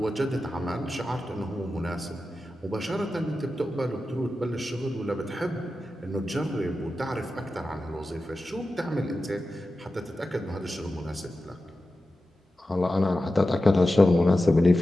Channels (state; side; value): normal; both; correlation 0.93